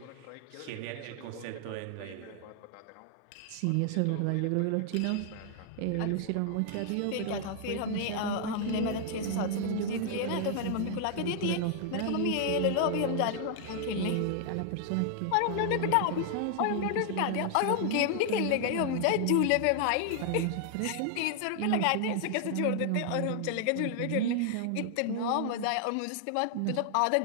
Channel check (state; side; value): different; both; correlation 0.00